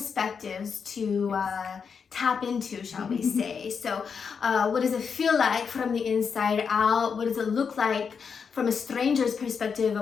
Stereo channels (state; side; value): quieter; right; 6.2 dB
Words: to tap into, shall we say. So what does it feel like from the inside out? What does it look like from a stranger's perspective